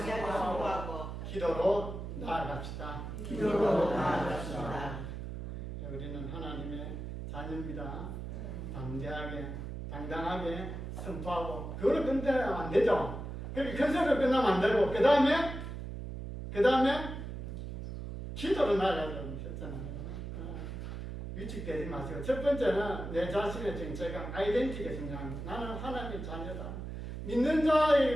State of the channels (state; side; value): noise; right; hum, 7 dB below the sound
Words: 기도로 나아갑시다. 우리는 하나님의 자녀입니다. 담대하게, 당당하게 선포하고 그걸 끝내면 안 되죠. 그렇게 큰 소리로 끝나면 안 되고 그 다음에 기도로 나아가려고 하셨잖아요. 위축되지 마시고 첫 번째는 내 자신의 정체감, 아이덴티티가 중요합니다. 나는 하나님의 자녀다. 믿는